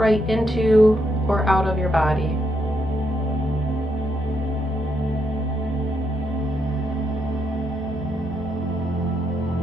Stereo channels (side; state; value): both; normal; correlation 0.78